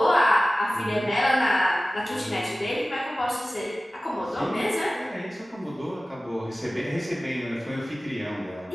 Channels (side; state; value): both; normal; correlation 0.97